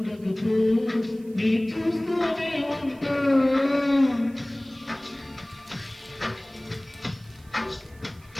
నీ చూస్తూనే ఉంటా.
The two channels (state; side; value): noise; right; hiss, 28 dB below the sound